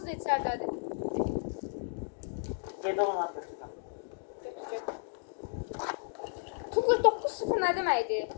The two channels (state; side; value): silent; right; digital silence